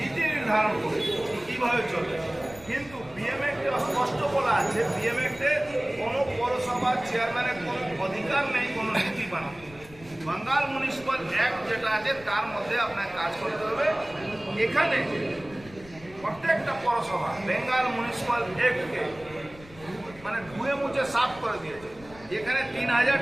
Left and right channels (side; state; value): left; noise; rumble, 20 dB below the sound